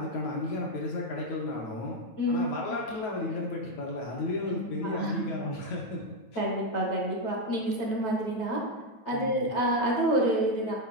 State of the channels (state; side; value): late; right; 9.2 ms